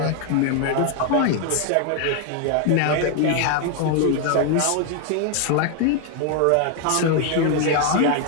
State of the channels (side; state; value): both; different; correlation 0.01